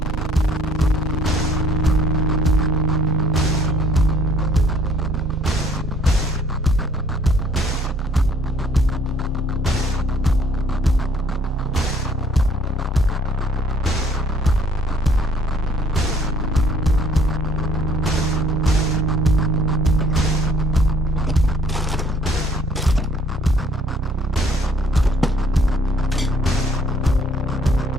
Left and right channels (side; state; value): both; normal; correlation 0.60